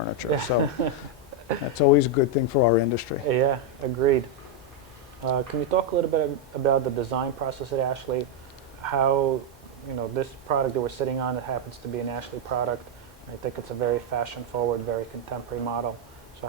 So that's always a good thing for our industry. Yeah, agreed. Can you talk a little bit about the design process at Ashley? How, this product that we're sitting on, it happens to be an Ashley product. I think it's a very fashion-forward, very contemporary model. So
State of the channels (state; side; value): normal; both; correlation 0.01